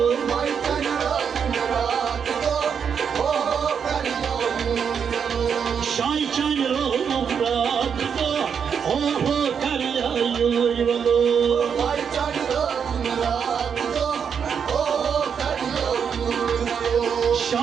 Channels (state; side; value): quieter; left; 7.1 dB